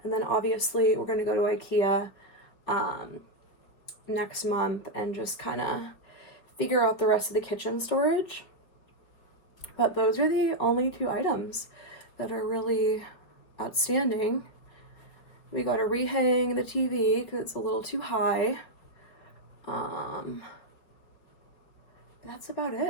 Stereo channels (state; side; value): late; right; 4.9 ms